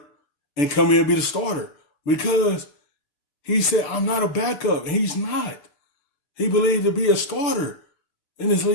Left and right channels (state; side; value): late; right; 6.8 ms